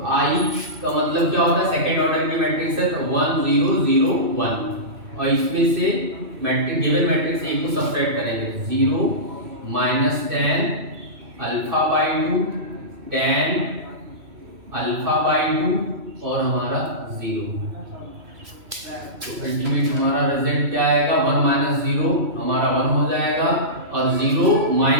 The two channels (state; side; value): late; left; 2.6 ms